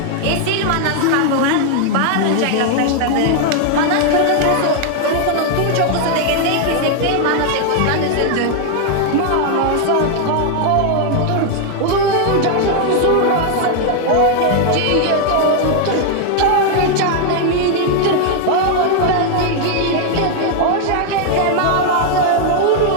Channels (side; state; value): both; different; correlation 0.00